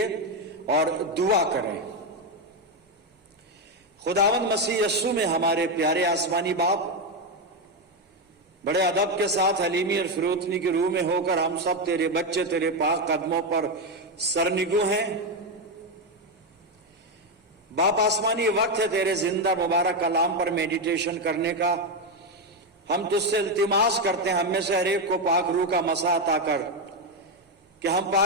और दुआ करें। खुदावंद मसीह यीशु में हमारे प्यारे आसमानी बाप, बड़े अदब के साथ हलीमी और फिरोतनी की रूह में होकर हम सब तेरे बच्चे तेरे पाक कदमों पर सरनिगू हैं। बाप आसमानी वक्त है तेरे जिंदा मुबारक कलाम पर मेडिटेशन करने का। हम तुझसे इल्तिमास करते हैं हम में से हर एक को पाक रूह का मसा अता कर कि हम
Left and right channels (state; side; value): normal; both; correlation 0.07